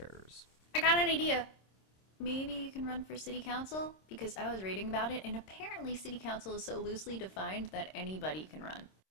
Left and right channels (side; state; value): right; late; 26 ms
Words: I got an idea. Maybe you can run for city council? Because I was reading about it, and apparently city council is so loosely defined that anybody can run.